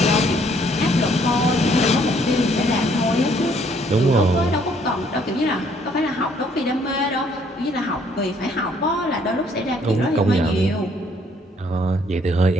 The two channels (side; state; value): both; normal; correlation 0.65